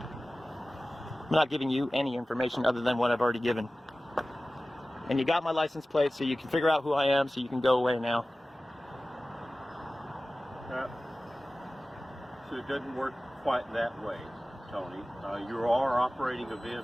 I'm not giving you any information other than what I've already given. And you got my license plate, so you can figure out who I am, so you can go away now. So it doesn't work quite that way, Tony. You are operating a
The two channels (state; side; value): normal; both; correlation 0.97